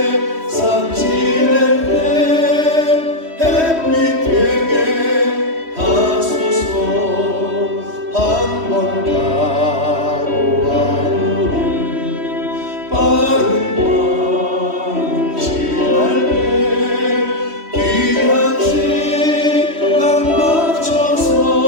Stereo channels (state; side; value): late; left; 3.1 ms